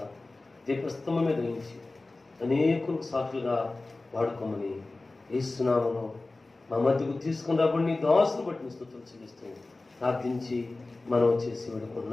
దీపస్తంభం మీద ఉంచి అనేకులకు సాక్షులుగా వాడుకోమని యేసునామములో మా మధ్యకు తీసుకుని రాబడి నీ దాసును బట్టి స్తుతులు చెల్లిస్తూ ప్రార్థించి మనం చేసి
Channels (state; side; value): quieter; right; 3.2 dB